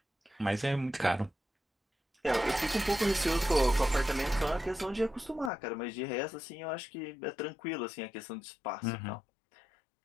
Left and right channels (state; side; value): drops out; right; at 5.5 s